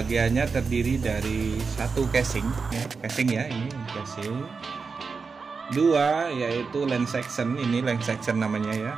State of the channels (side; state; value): left; quieter; 4.9 dB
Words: terdiri dari satu casing ya, ini casing. Dua yaitu lens section, ini lens section namanya ya,